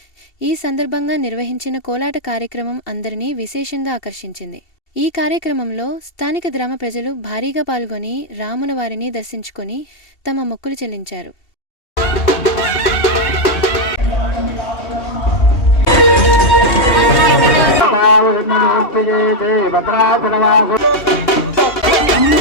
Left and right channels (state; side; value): late; right; 2.7 ms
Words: ఈ సందర్భంగా నిర్వహించిన కోలాట కార్యక్రమం అందరినీ విశేషంగా ఆకర్షించింది. ఈ కార్యక్రమంలో స్థానిక గ్రామ ప్రజలు భారీగా పాల్గొని రాములవారిని దర్శించుకొని తమ మొక్కులు చెల్లించారు.